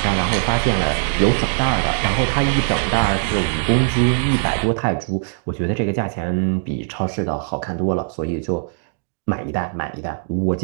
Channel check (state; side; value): silent; left; digital silence